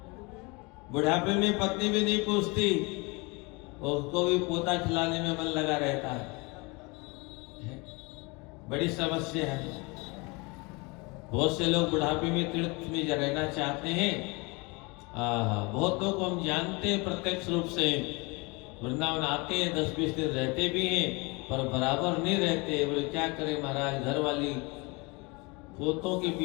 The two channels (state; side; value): quieter; right; 27.5 dB